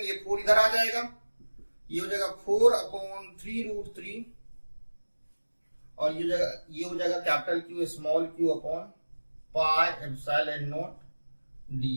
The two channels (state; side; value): inverted; both; correlation -1.00